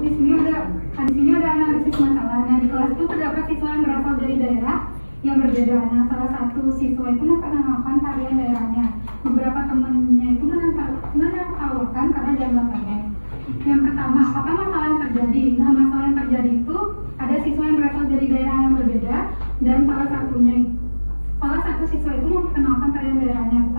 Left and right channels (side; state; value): both; inverted; correlation -1.00